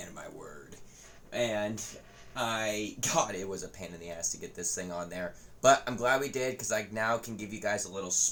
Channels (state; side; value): identical; both; correlation 1.00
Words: of my word. And God, it was a pain in the ass to get this thing on there. But I'm glad we did, because I now can give you guys a little